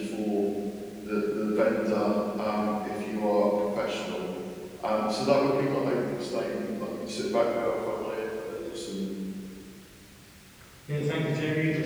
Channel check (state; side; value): identical; both; correlation 1.00